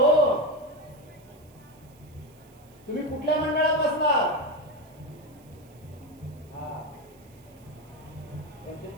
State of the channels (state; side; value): noise; right; hiss, 29 dB below the sound